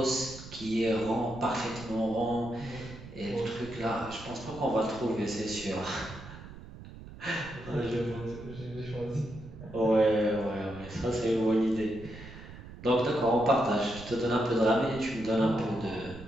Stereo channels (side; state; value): right; noise; rumble, 15 dB below the sound